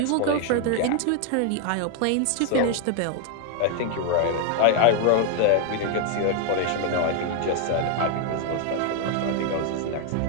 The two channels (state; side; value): different; both; correlation 0.01